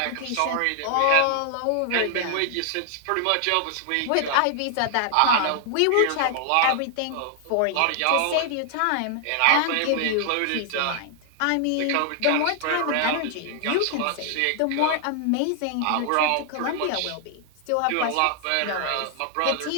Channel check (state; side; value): different; both; correlation 0.00